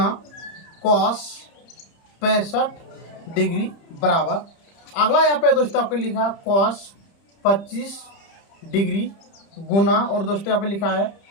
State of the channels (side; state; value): right; late; 30 ms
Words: कॉस 65 डिग्री बराबर, अगला यहाँ पे दोस्तों आपको लिखा है कॉस 25 डिग्री गुना, और दोस्तों यहाँ पे लिखा है